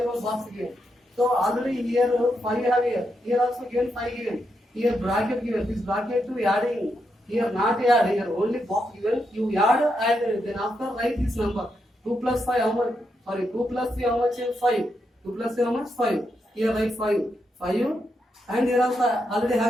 on box given. So already here 5 have here. Here also given 5 given. Here bracket given. This bracket to adding. Here not add. Here only box given. You add and then after write this number. 2 plus 5 how much? Sorry, 2 plus 3 how much? 5. 2 plus 3 how much? 5. Here write 5. 5 and here also already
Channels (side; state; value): both; normal; correlation 0.82